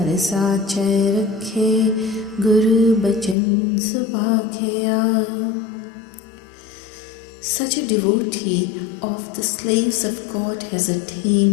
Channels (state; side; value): drops out; right; at 3.4 s